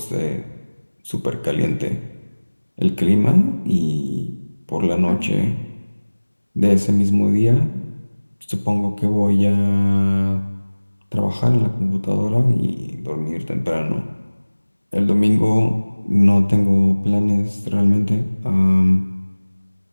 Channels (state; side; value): inverted; both; correlation -1.00